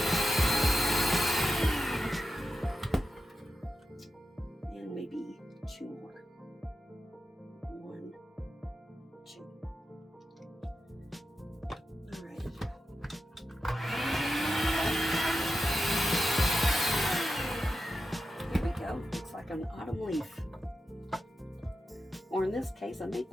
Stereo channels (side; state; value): both; normal; correlation 0.90